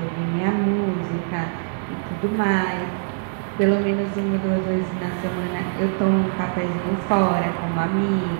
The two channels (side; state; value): left; silent; 63 dB below the other